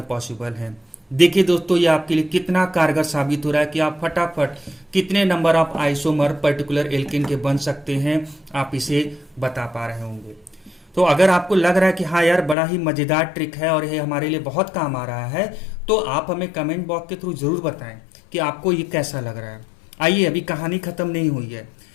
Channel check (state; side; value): drops out; right; at 12.6 s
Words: पॉसिबल हैं। देखिए दोस्तों, ये आपके लिए कितना कारगर साबित हो रहा है कि आप फटाफट कितने number of isomer particular alkane के बन सकते हैं, आप इसे बता पा रहे होंगे। तो अगर आपको लग रहा है कि हाँ यार बड़ा ही मजेदार ट्रिक है और ये हमारे लिए बहुत काम आ रहा है, तो आप हमें कमेंट बॉक्स के थ्रू जरूर बताएं कि आपको ये कैसा लग रहा है। आइए, अभी कहानी खत्म नहीं हुई है।